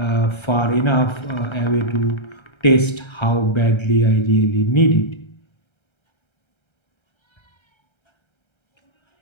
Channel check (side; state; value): right; late; 1.3 ms